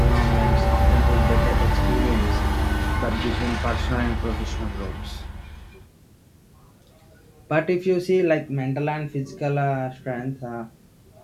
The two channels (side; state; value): both; identical; correlation 1.00